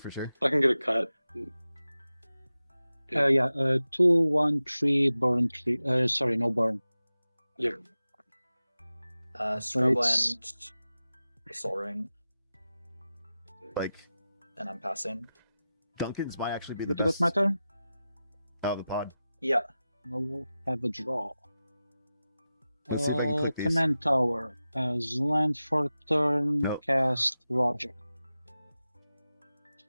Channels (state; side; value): inverted; both; correlation -0.94